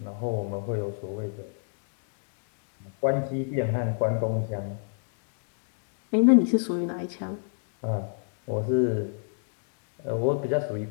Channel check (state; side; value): silent; right; digital silence